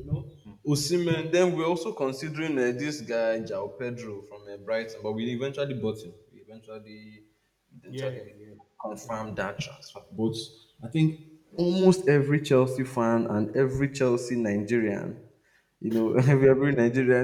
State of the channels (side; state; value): both; identical; correlation 1.00